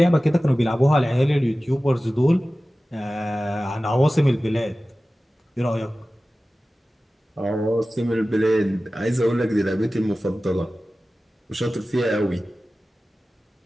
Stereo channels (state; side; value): normal; both; correlation 0.96